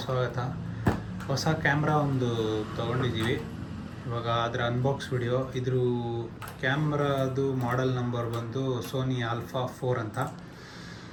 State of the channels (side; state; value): both; identical; correlation 1.00